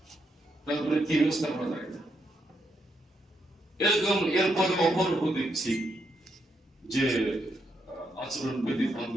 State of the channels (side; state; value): both; normal; correlation 0.79